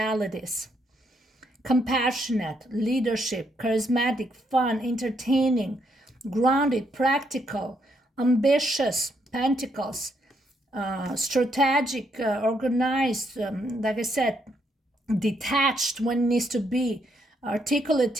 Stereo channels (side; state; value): both; normal; correlation 0.75